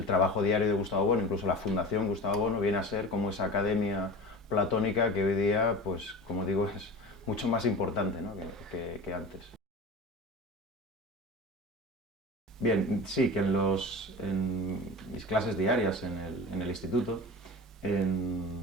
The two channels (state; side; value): normal; both; correlation 0.33